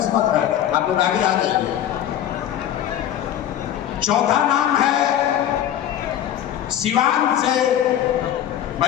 है, आप लोग आगे आ जाइए। चौथा नाम है सिवान से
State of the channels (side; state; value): right; quieter; 11.0 dB